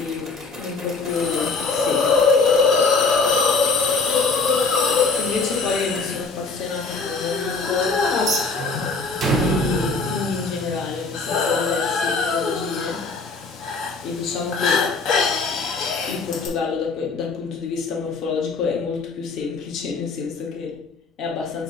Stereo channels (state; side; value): quieter; right; 4.1 dB